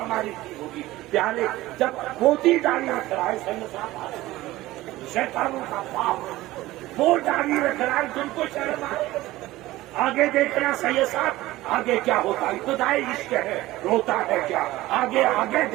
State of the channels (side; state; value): left; quieter; 17.3 dB